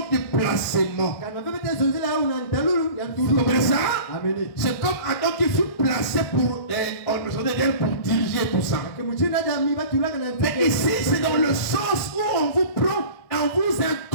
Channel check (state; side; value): late; right; 1.6 ms